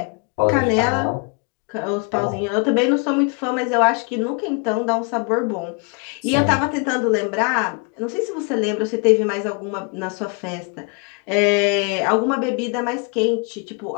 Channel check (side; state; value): right; quieter; 35.3 dB